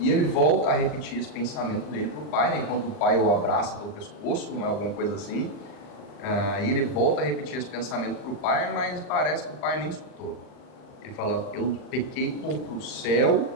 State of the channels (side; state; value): right; late; 39 ms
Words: ele volta a repetir esse pensamento dele para o pai, né? Enquanto o pai o abraça pelo pescoço, não é alguma coisa assim. E ele volta a repetir esse pensamento para o pai, mas parece que o pai nem escutou. Ele fala, eu pequei contra o céu